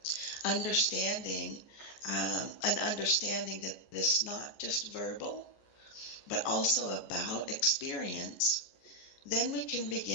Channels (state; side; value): late; right; 14 ms